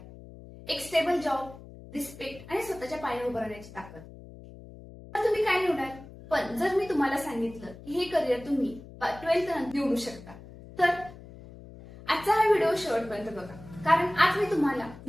एक स्टेबल जॉब, रिस्पेक्ट आणि स्वतःच्या पायावर उभं राहण्याची ताकद. तर तुम्ही काय निवडाल? पण जर मी तुम्हाला सांगितलं की हे करिअर तुम्ही 12th नंतर निवडू शकता, तर आजचा हा व्हिडिओ शेवटपर्यंत बघा, कारण आज मी तुम्हाला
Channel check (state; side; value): noise; left; hum, 17 dB below the sound